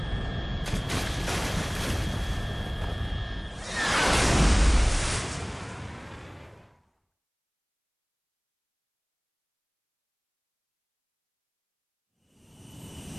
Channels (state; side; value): identical; both; correlation 1.00